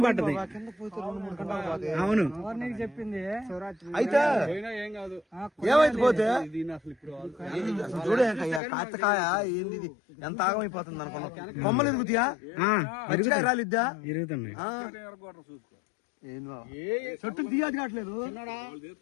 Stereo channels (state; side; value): drops out; right; at 8.6 s